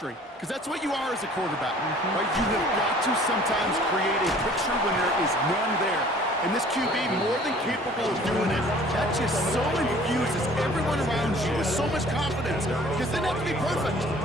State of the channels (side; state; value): both; normal; correlation 0.52